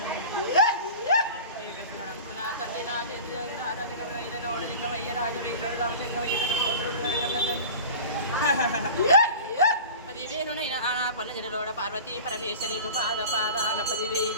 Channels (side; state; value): both; inverted; correlation -0.36